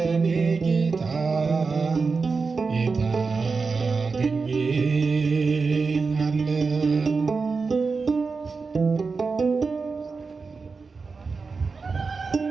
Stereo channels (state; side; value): quieter; left; 4.6 dB